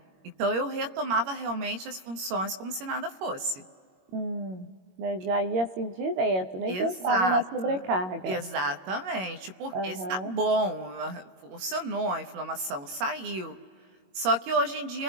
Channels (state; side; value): late; left; 22 ms